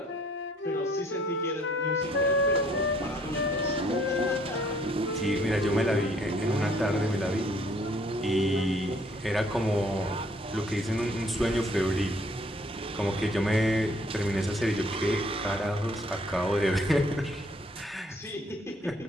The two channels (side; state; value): both; normal; correlation 0.62